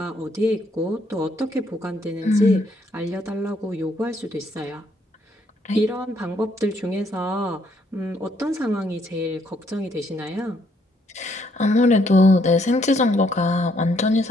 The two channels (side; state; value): both; normal; correlation 0.70